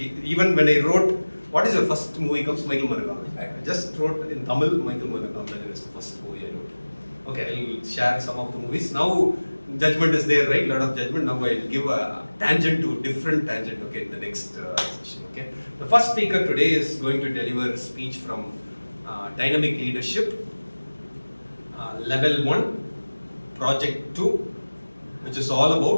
when I wrote, what is your first movie comes, Michael Managam. I just wrote in Tamil, Michael Managam, that is the first movie I wrote. Okay, I'll share some of the movies. Now, judgment is there, right? Lot of judgment. Now I'll give a tangent to different tangent, okay, in the next session, okay. The first speaker today is going to deliver a speech from Dynamic Leadership, Level 1, Project 2, which is all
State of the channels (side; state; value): both; inverted; correlation -1.00